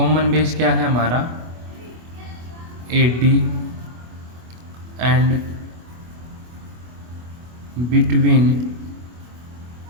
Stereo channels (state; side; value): late; left; 25 ms